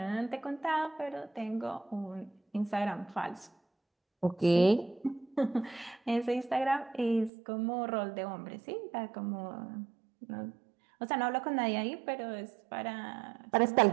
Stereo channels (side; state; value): left; drops out; at 7.3 s